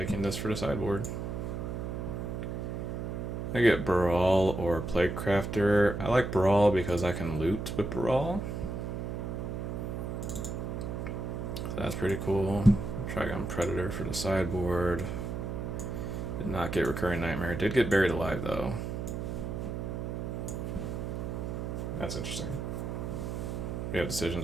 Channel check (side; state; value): right; noise; hum, 4 dB below the sound